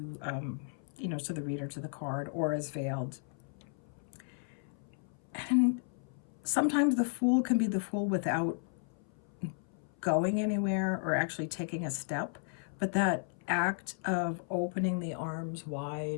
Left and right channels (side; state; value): right; silent; 55 dB below the other